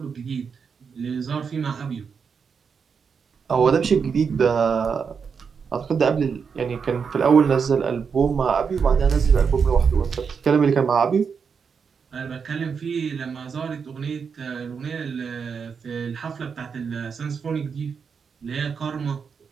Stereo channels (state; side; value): quieter; left; 6.1 dB